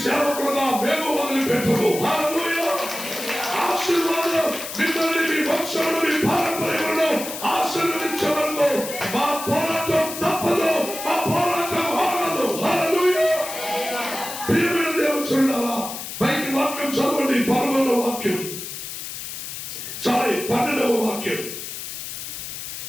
సేవకులుగా మేము వదిలిపెట్టము. హల్లెలూయా. ఆశీర్వాదం మిమ్మల్ని, మీ వంశంలో, మీ పారంపర్యంలో ఆశీర్వదించే వరకు మా పోరాటం తప్పదు, మా పోరాటం ఆగదు. హల్లెలూయా. ప్రియమైన దేవుని చూడాలా, బయట వాక్యం చదవండి. 11వ వాక్యం, 12వ వాక్యం.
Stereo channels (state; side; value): noise; left; hiss, 8 dB below the sound